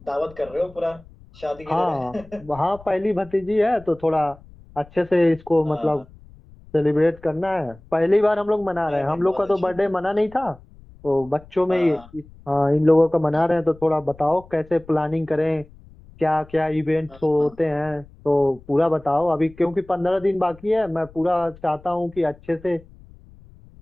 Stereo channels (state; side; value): noise; left; rumble, 23 dB below the sound